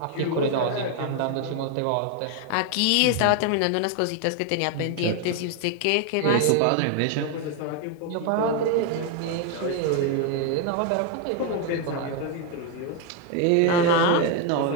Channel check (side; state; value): both; different; correlation 0.01